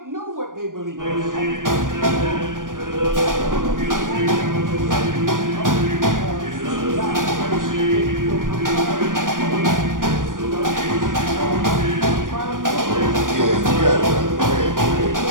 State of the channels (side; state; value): left; late; 0.89 ms